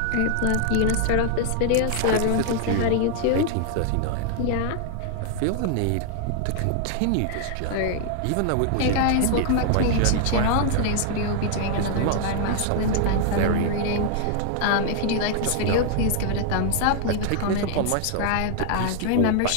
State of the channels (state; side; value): different; both; correlation 0.00